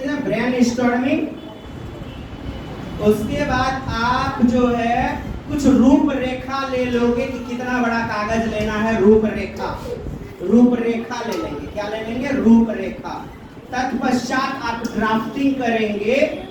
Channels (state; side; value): identical; both; correlation 1.00